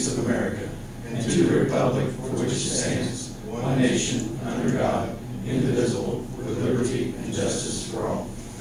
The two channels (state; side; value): identical; both; correlation 1.00